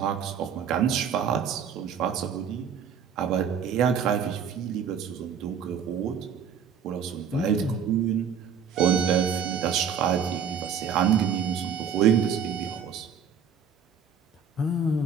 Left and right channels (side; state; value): left; quieter; 6.9 dB